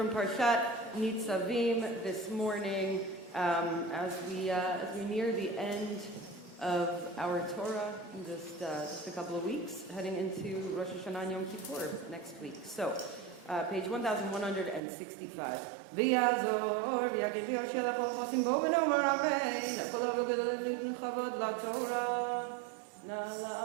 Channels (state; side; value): drops out; left; at 14.8 s